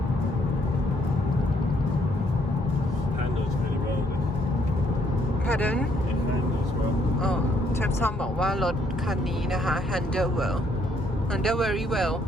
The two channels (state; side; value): normal; both; correlation 0.69